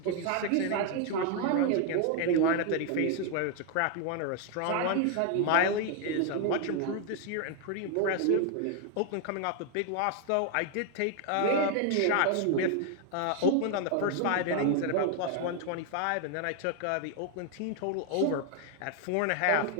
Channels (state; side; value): different; both; correlation 0.00